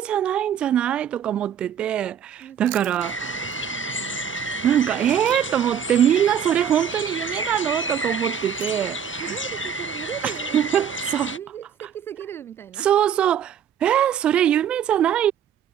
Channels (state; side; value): quieter; left; 8.5 dB